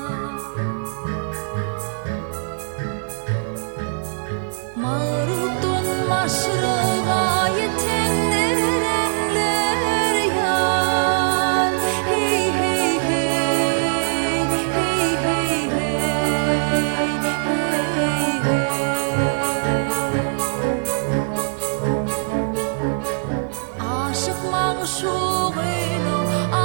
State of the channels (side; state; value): left; silent; digital silence